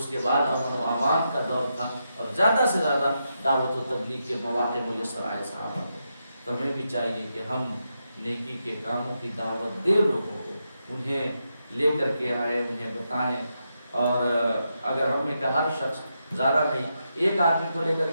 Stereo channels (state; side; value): inverted; both; correlation -0.85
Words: کے بعد امن و امان کا دور تھا اور زیادہ سے زیادہ دعوت و تبلیغ کے مواقع میسر آئے صحابہ کو۔ تو ہمیں بھی چاہیے کہ ہم نیکی کے کاموں کی دعوت دیں لوگوں کو، انہیں لے کر کے آئے، انہیں بتائیں، اور اگر ہم میں کا ہر شخص زیادہ نہیں ایک آدمی کو لے کر